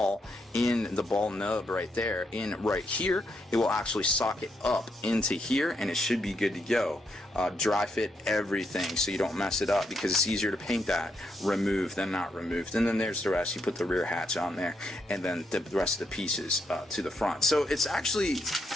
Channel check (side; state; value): both; normal; correlation 0.79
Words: in the ball nub right there, in right here, it will actually socket up into here, and it should be good to go. Dry fit everything so you don't mess it up, because it's easier to paint that removed than not removed. And then there's the rest. You put the rear hatch on there, and then the rest of the pieces to the front. So it's actually,